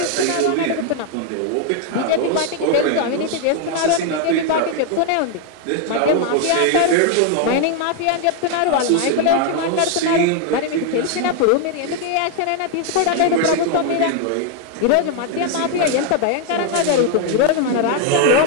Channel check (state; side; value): different; both; correlation 0.00